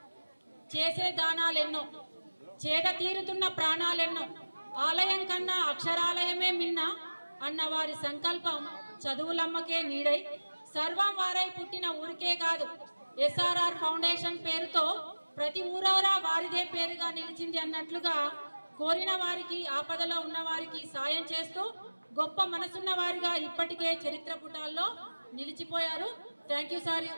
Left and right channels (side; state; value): both; inverted; correlation -1.00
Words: చేసే దానాలెన్నో, చేట తీరుతున్న ప్రాణాలెన్నో, ఆలయం కన్నా అక్షరాలయమే మిన్న అన్న వారి సంకల్పం చదువులమ్మకే నీడై సర్వం వారై పుట్టిన ఊరికే కాదు, ఎస్ఆర్ఆర్ ఫౌండేషన్ పేరుతో ప్రతి ఊరవరా వారిదే పేరుగా నిలిచింది అన్నట్లుగా కోరిన వారికి, ఆపదలో ఉన్న వారికి సాయం చేస్తూ గొప్ప మనసున్న వారిగా ఇప్పటికే చరిత్ర పుటాల్లో నిలిచిపోయారు. Thank you sir.